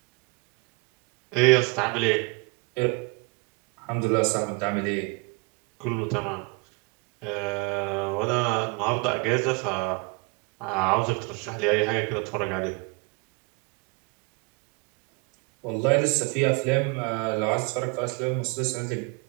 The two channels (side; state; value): left; quieter; 30.1 dB